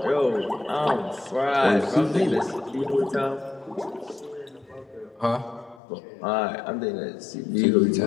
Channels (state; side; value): drops out; right; at 5.8 s